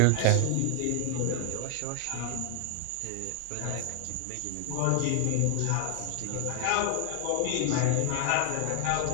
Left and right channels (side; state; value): both; different; correlation 0.00